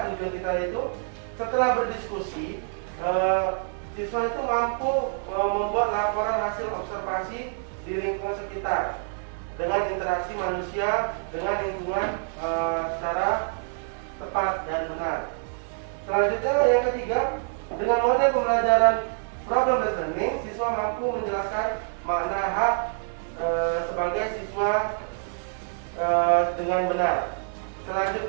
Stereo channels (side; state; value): left; silent; digital silence